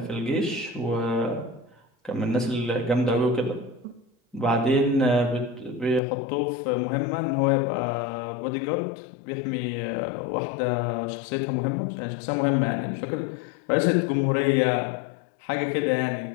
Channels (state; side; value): drops out; right; at 6.0 s